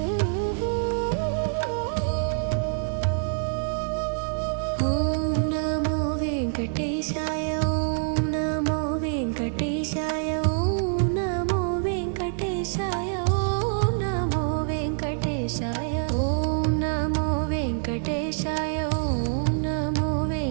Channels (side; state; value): left; silent; digital silence